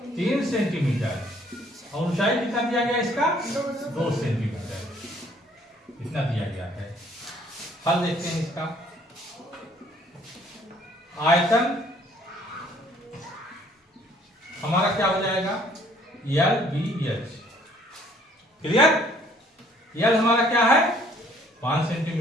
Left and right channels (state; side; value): normal; both; correlation 0.60